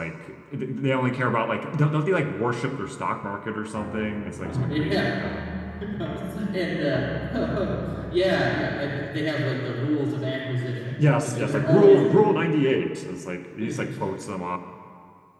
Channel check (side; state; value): both; identical; correlation 1.00